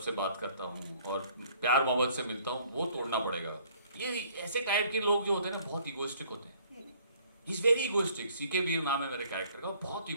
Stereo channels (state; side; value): inverted; both; correlation -0.59